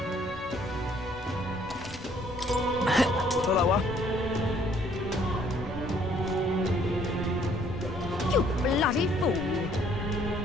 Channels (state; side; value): normal; both; correlation 0.62